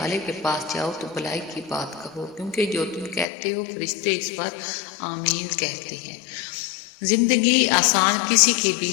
کے پاس جاؤ تو بھلائی کی بات کہو، کیونکہ جو تم کہتے ہو فرشتے اس پر آمین کہتے ہیں۔ زندگی آسان کسی کی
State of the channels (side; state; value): right; drops out; at 3.2 s